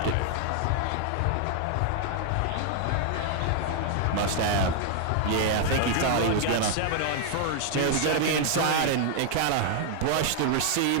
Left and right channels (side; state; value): both; different; correlation 0.00